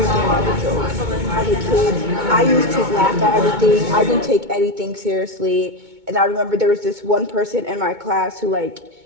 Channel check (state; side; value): late; left; 2.2 ms